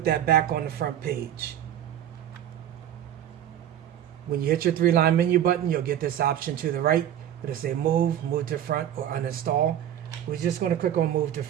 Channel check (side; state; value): left; quieter; 10.7 dB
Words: that back on the front page. When you hit your 3-line menu button, you'll get this option to the right. It'll say move to front, or uninstall. We're just going to click on move to